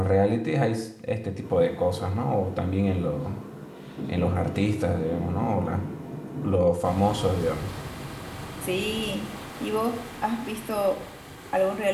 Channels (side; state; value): both; identical; correlation 1.00